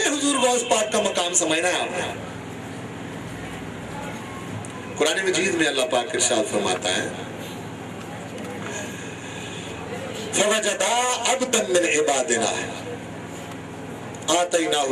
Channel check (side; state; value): both; identical; correlation 1.00